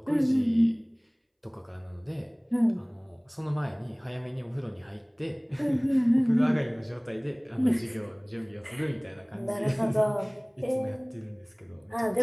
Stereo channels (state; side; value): identical; both; correlation 1.00